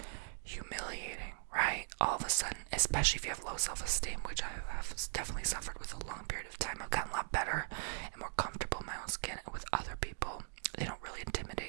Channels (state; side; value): silent; left; digital silence